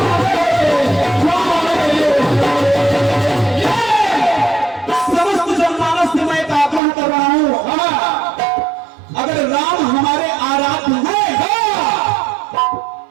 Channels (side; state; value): left; drops out; at 6.8 s